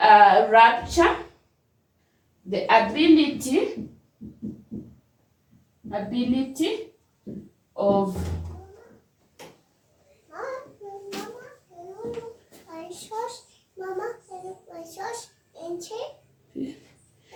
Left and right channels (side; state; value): both; identical; correlation 1.00